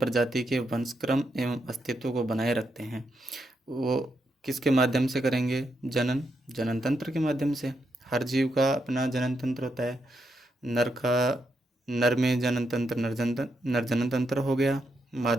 के वंशक्रम एवं अस्तित्व को बनाए रखते हैं, वो किसके माध्यम से करेंगे? जनन तंत्र के माध्यम से। हर जीव का अपना जनन तंत्र होता है। नर में जनन तंत्र नर जनन तंत्र हो गया,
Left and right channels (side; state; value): both; normal; correlation 0.82